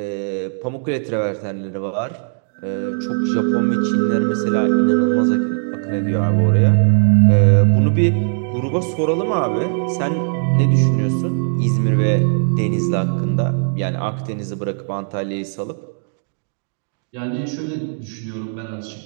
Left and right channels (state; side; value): silent; left; digital silence